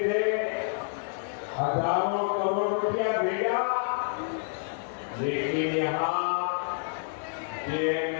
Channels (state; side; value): silent; right; digital silence